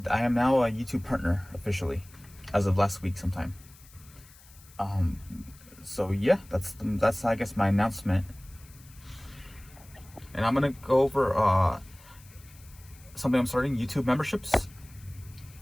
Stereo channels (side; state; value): left; noise; hiss, 24 dB below the sound